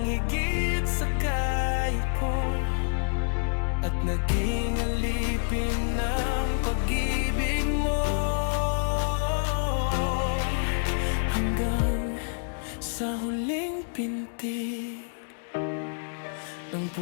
higit sa kaya ko. At naging alipin ng pag-ibig mo, hanggang sa huling pintig ng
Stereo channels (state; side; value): silent; right; digital silence